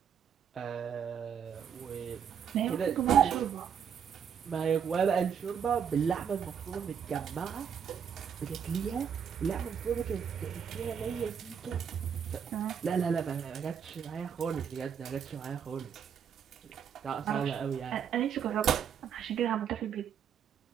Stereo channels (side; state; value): left; quieter; 7.7 dB